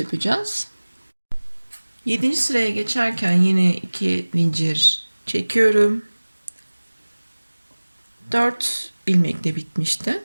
7. sıraya geçerken yine 2 zincir çekiyorum. 4 ilmekle bitmişti.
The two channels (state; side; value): inverted; both; correlation -1.00